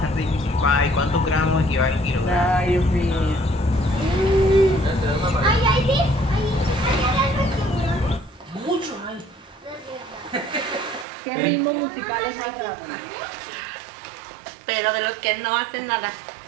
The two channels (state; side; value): drops out; left; at 11.1 s